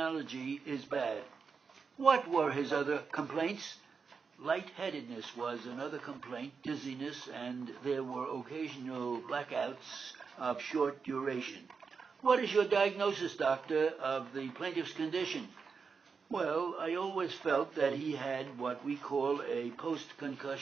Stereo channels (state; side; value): quieter; left; 5.4 dB